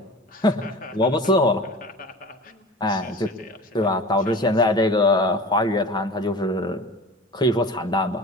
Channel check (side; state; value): both; normal; correlation 0.37